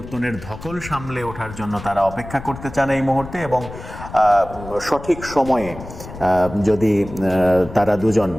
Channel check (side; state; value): left; noise; rumble, 13 dB below the sound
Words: ধকল সামলে ওঠার জন্য তারা অপেক্ষা করতে চান এই মুহূর্তে, এবং সঠিক সময়ে যদি তারা দুজন